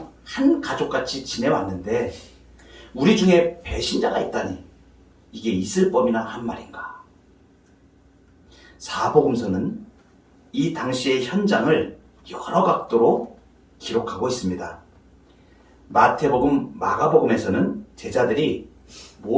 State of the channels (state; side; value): identical; both; correlation 1.00